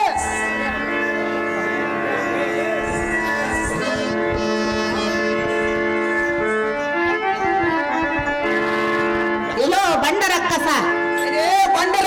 ಎಲ್ಲೋ ಬಂಡ ರಕ್ಕಸ, ಬಂಡ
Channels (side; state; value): both; identical; correlation 1.00